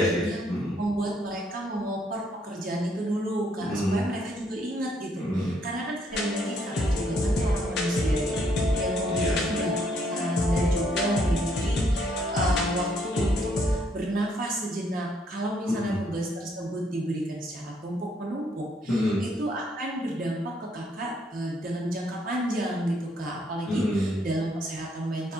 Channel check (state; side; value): normal; both; correlation 0.70